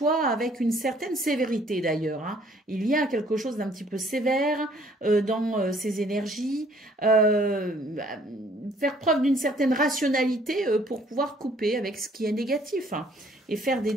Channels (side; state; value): both; normal; correlation 0.60